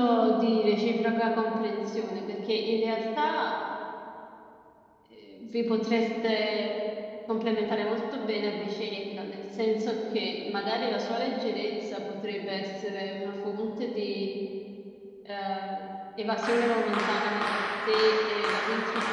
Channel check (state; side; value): identical; both; correlation 1.00